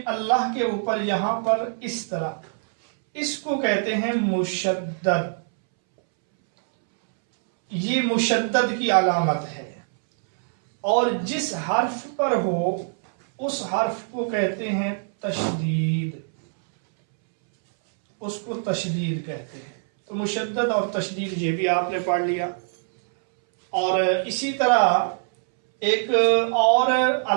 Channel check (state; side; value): silent; left; 63 dB below the other